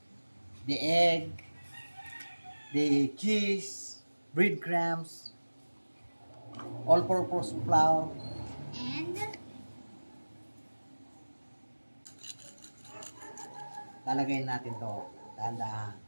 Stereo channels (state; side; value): inverted; both; correlation -1.00